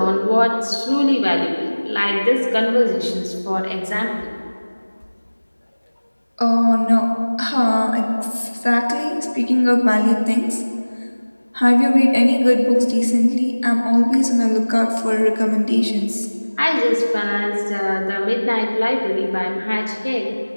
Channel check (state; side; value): inverted; both; correlation -1.00